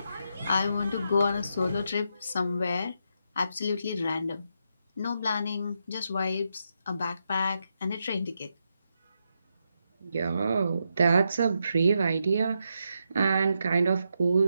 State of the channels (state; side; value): inverted; both; correlation -0.83